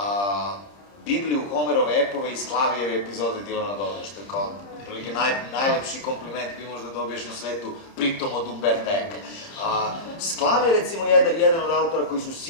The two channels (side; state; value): right; late; 30 ms